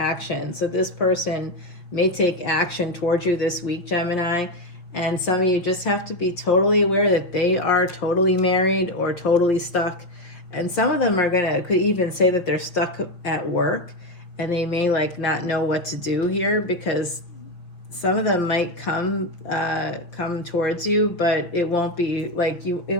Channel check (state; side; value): late; right; 5.7 ms